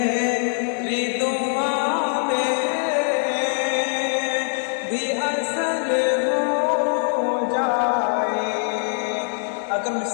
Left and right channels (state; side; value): silent; right; 64 dB below the other